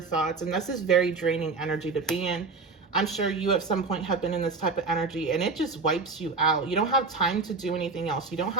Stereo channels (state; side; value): quieter; left; 4.1 dB